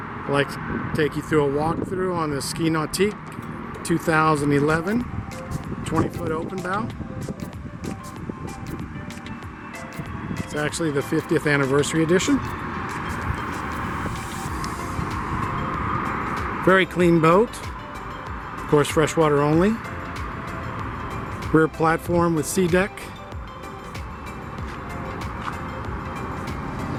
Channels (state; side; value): identical; both; correlation 1.00